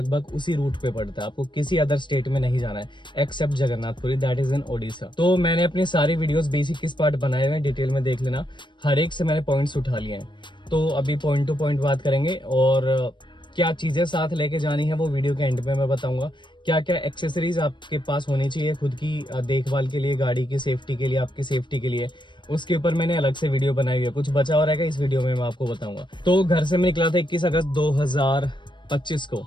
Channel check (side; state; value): right; late; 0.22 ms